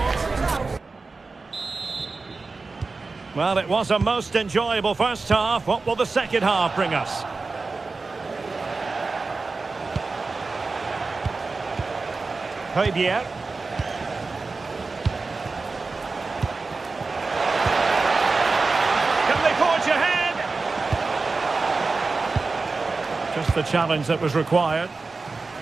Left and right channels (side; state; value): left; quieter; 3.9 dB